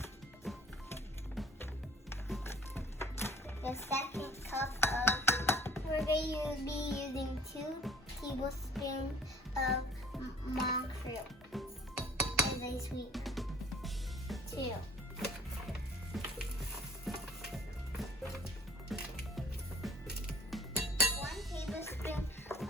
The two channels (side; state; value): both; normal; correlation 0.52